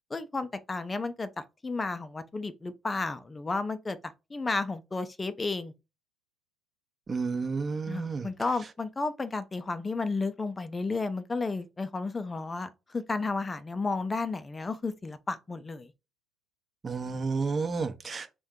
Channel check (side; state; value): both; normal; correlation 0.89